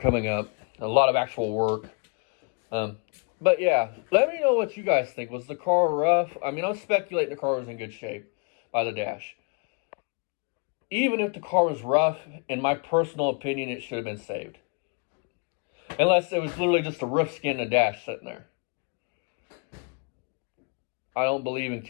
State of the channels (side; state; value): right; quieter; 34.3 dB